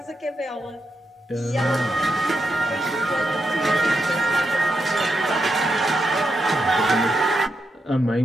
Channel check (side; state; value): both; normal; correlation 0.83